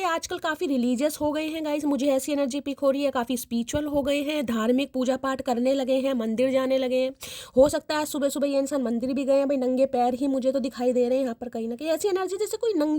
आजकल काफ़ी रिलीजियस हो गए हैं गाइस, मुझे ऐसी एनर्जी पिक हो रही है, काफ़ी स्पिरिचुअल हो गए हैं, धार्मिक पूजा पाठ करने लगे हैं, मंदिर जाने लगे हैं। हो सकता है सुबह सुबह ये इंसान मंदिर भी गए हैं। भाई नंगे पैर ही मुझे तो दिखाई दे रहे हैं यहाँ पर, कहीं ना कहीं ऐसी एनर्जी जैसे कोई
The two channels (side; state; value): both; identical; correlation 1.00